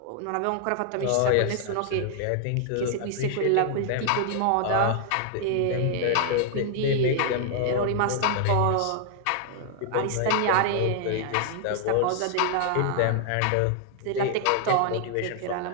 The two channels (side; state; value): both; different; correlation 0.00